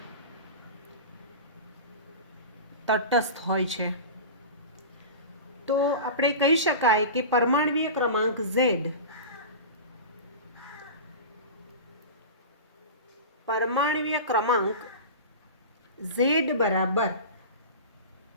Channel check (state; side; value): inverted; both; correlation -0.30